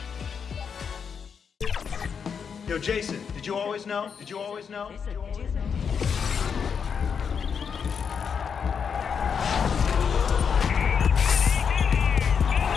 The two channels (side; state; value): right; quieter; 6.6 dB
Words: Yo, Jason, did you always know? Did you always know?